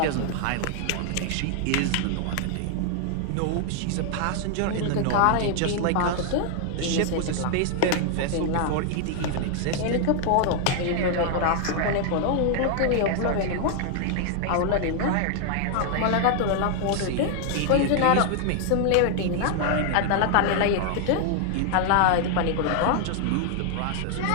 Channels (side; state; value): both; different; correlation 0.00